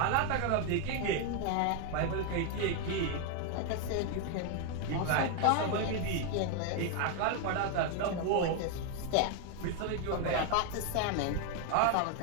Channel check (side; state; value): both; different; correlation 0.01